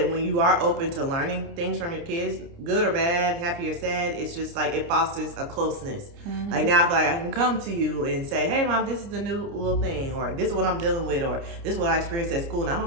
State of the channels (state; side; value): late; left; 29 ms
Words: when you are open to learning things from your kids, good or bad, happy or sad, it's just like it fosters a closeness. Mm-hmm. Like now I feel like I can come to you and say, hey, Mom, this is the new little thing, or this is what I'm dealing with, or this is what I experienced at school, and